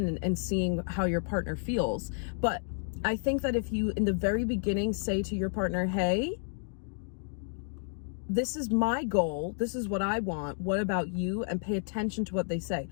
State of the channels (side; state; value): right; silent; digital silence